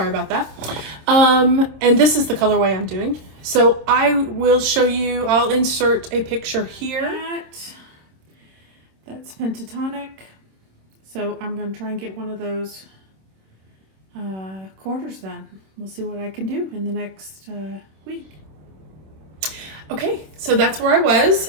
about that. And this is the colorway I'm doing. So I will show you, I'll insert a picture here. That's Pentatonic. So I'm going to try and get one of those quarters done. We'll see what I can do in the next week. Okay, so that's where I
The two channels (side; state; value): left; late; 26 ms